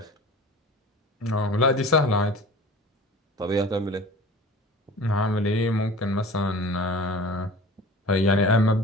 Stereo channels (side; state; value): both; normal; correlation 0.40